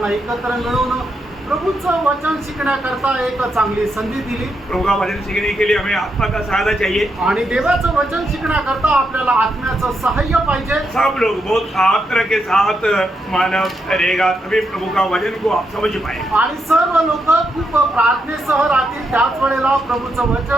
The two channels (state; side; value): normal; both; correlation 0.82